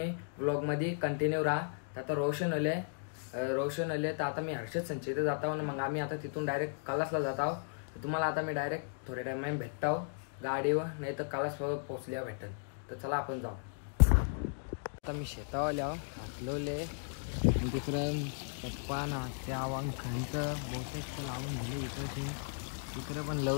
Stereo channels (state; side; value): silent; right; digital silence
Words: ब्लॉगमध्ये कंटिन्यू राहा। तर आता रोशन आले तर आता मी हर्षद संचित जात आहो, मग आम्ही आता तिथून डायरेक्ट कलासला जात आहो। तुम्हाला आता मी डायरेक्ट थोड्या टाइम भेटतो गाडीवर, नाही तर कलास पोहोचल्या भेटेल। तर चला आपण जाऊ। आता मी शेतावर हाकलोले आणि तिकडं पप्पा ना त्यावं खांचं बहुतेक लावून गेले, इकडं पण